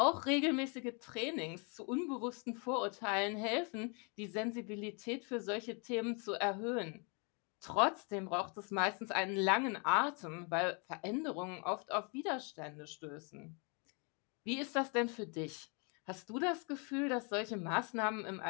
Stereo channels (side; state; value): right; quieter; 35.3 dB